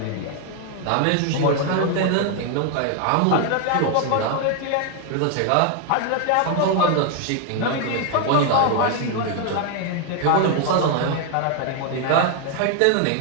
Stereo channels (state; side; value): different; both; correlation 0.01